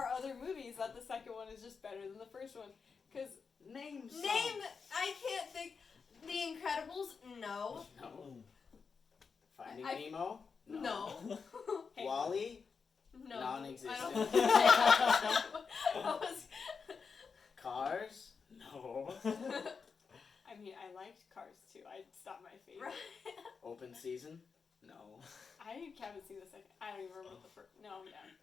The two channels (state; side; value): quieter; right; 5.5 dB